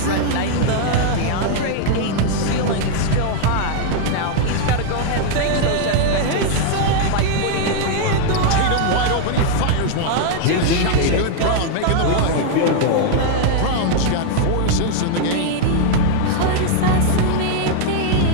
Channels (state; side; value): different; both; correlation 0.00